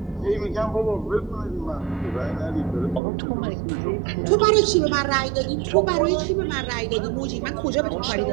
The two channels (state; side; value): drops out; left; at 3.0 s